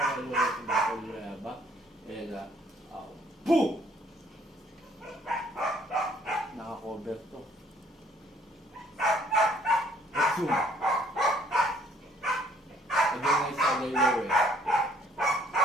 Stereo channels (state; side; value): normal; both; correlation 0.62